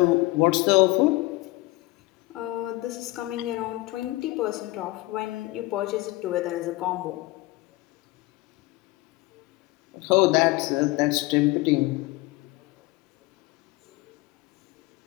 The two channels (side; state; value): right; quieter; 20.5 dB